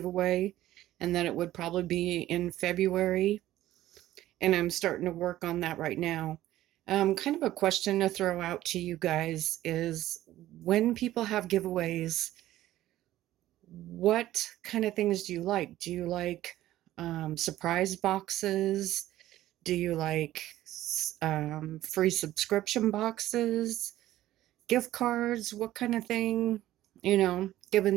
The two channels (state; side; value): quieter; left; 14.4 dB